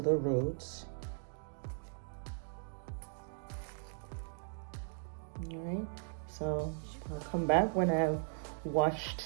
roots. All right, so I'll come back when I've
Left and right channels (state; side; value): silent; left; digital silence